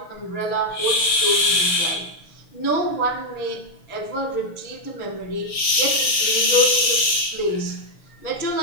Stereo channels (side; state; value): right; late; 6.6 ms